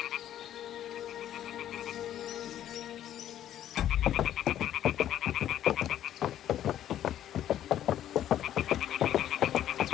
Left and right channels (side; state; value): right; quieter; 11.5 dB